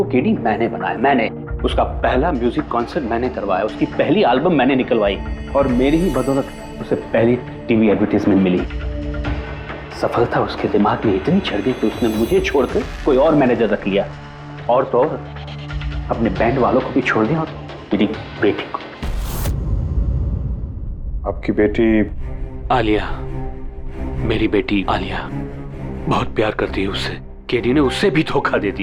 केडी मैंने बनाया, मैंने। उसका पहला म्यूजिक कॉन्सर्ट मैंने करवाया, उसकी पहली एल्बम मैंने निकलवाई, और मेरी ही बदौलत उसे पहली टीवी एडवर्टाइजमेंट मिली। सफलता उसके दिमाग में इतनी चढ़ गई कि उसने मुझे छोड़कर कोई और मैनेजर रख लिया, और तो और अपने बैंड वालों को भी छोड़ दिया, और मेरी बेटी को। आपकी बेटी आलिया, मेरी बेटी आलिया बहुत प्यार करती है उससे। केडी ने उससे भी धोखा दे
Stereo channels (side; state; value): both; identical; correlation 1.00